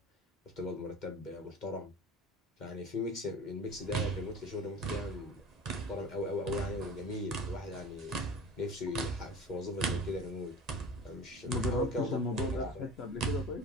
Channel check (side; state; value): both; normal; correlation 0.37